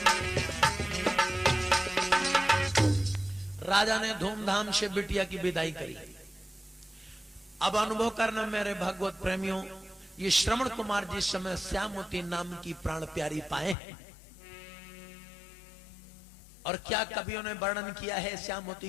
राजा ने धूमधाम से बिटिया की विदाई करी। अब अनुभव करना मेरे भगवत प्रेमियों, ये श्रवण कुमार जिस समय श्यामवती नाम की प्राण प्यारी पाए हैं, और क्या कवियों ने वर्णन किया है श्यामवती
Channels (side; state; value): right; drops out; at 13.8 s